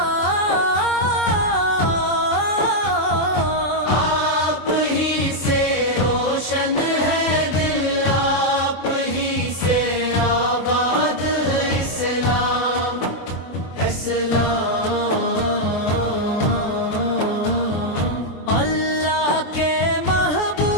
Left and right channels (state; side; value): late; right; 24 ms